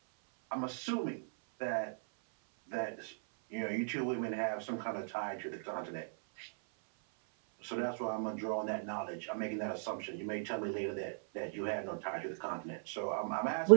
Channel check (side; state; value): left; silent; 53 dB below the other